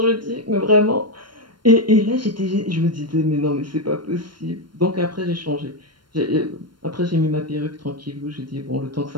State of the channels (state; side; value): late; left; 0.72 ms